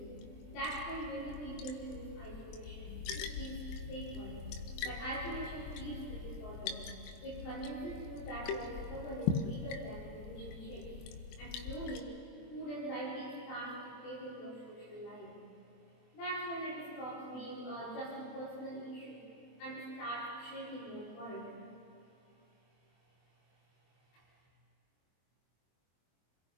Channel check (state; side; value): late; right; 24 ms